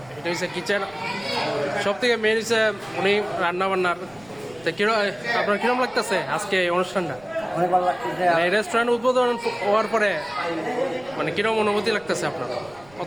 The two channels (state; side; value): noise; right; rumble, 25 dB below the sound